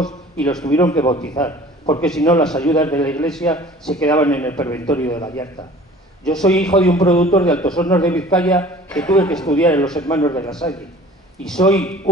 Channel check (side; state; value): both; normal; correlation 0.47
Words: y los tuvieron que bautizar, porque si no las ayudas de la Iglesia se quedaban en el Preventorio de Gallarta. Yo soy hijo de un productor de Altos Hornos de Vizcaya que tuve que estudiar en los Hermanos de la Salle, y soy